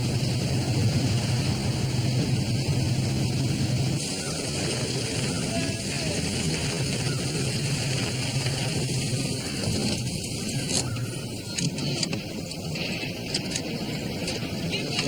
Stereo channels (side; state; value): left; noise; hiss, 23 dB below the sound